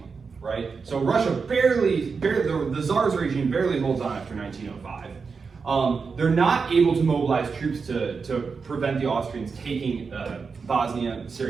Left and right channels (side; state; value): left; quieter; 5.1 dB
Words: right? So Russia barely the Tsar's regime barely holds on after 1905. They're not able to mobilize troops to prevent the Austrians taking Bosnia,